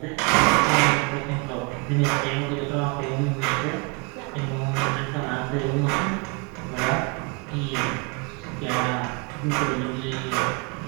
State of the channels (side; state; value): left; quieter; 31.0 dB